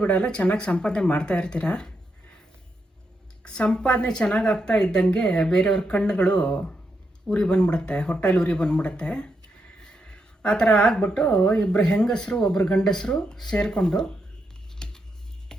ಬಿಡಲ್ಲ, ಚೆನ್ನಾಗಿ ಸಂಪಾದನೆ ಮಾಡ್ತಾ ಇರ್ತೀರ. ಸಂಪಾದನೆ ಚೆನ್ನಾಗಿ ಆಗ್ತಾ ಇದ್ದಂಗೆ ಬೇರೆಯವ್ರ ಕಣ್ಣುಗಳು ಉರಿ ಬಂದ್ಬಿಡುತ್ತೆ, ಹೊಟ್ಟೆಲಿ ಉರಿ ಬಂದ್ಬಿಡುತ್ತೆ. ಆ ಥರ ಆಗ್ಬಿಟ್ಟು ಇಬ್ಬರು ಹೆಂಗಸರು ಒಬ್ಬರು ಗಂಡಸರು ಸೇರಿಕೊಂಡು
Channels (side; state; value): both; normal; correlation 0.82